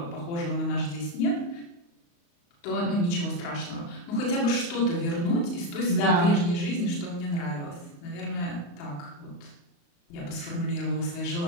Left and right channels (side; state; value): right; late; 35 ms